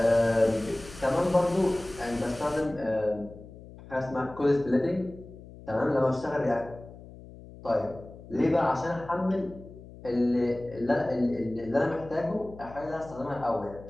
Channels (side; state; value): left; noise; hum, 17 dB below the sound